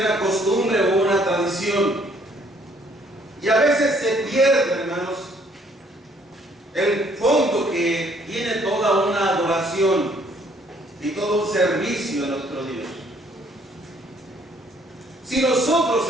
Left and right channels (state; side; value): normal; both; correlation 0.63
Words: costumbre o una tradición, y a veces se pierde, hermanos, el fondo que tiene toda una adoración y todo un servicio a nuestro Dios. Si nosotros,